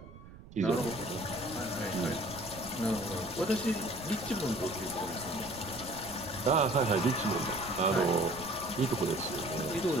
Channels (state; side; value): noise; right; rumble, 17 dB below the sound